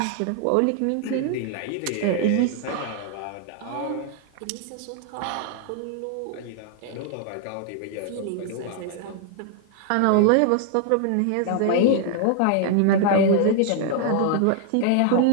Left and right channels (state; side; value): different; both; correlation 0.00